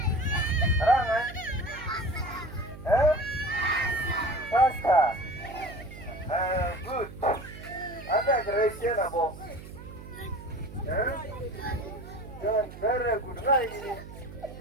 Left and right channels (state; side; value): noise; right; hum, 14 dB below the sound